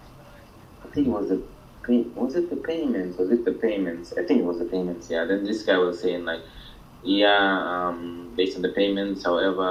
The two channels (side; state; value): both; identical; correlation 1.00